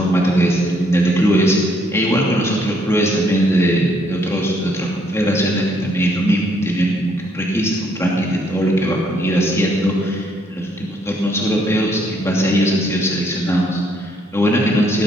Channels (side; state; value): both; normal; correlation 0.69